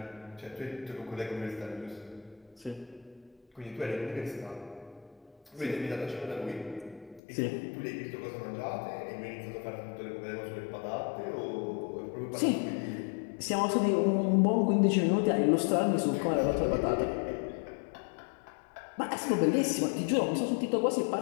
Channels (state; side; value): drops out; right; at 7.2 s